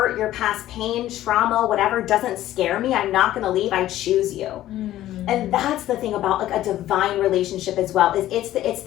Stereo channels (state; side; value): quieter; right; 13.8 dB